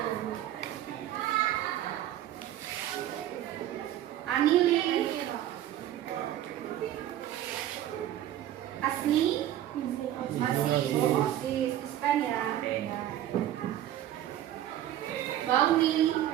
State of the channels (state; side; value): quieter; left; 12.4 dB